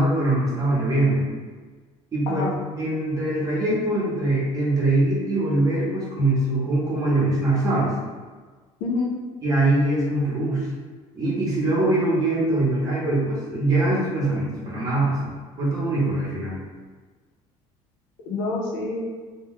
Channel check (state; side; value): normal; both; correlation 0.59